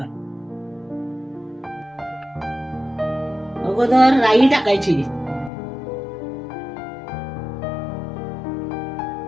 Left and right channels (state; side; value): drops out; right; at 5.5 s